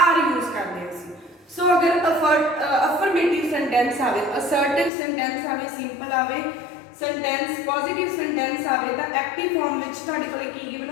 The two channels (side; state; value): right; drops out; at 4.9 s